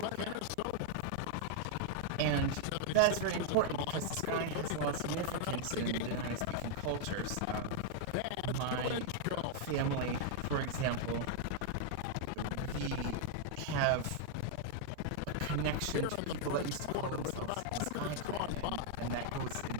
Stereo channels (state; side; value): different; both; correlation -0.01